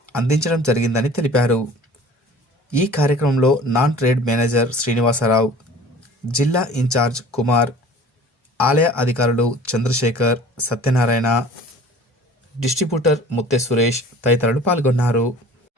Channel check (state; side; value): normal; both; correlation 0.45